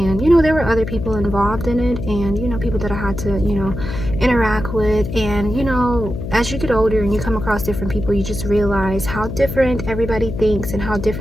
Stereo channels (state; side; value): noise; left; hum, 7 dB below the sound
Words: you know, there were other people involved in it, and, you know, people that I had to, you know, interact with. And, you know, as you get older and you come across different people, you just realize how different everybody thinks and how